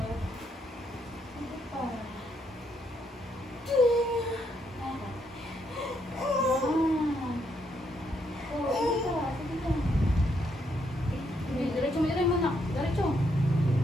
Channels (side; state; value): both; normal; correlation 0.76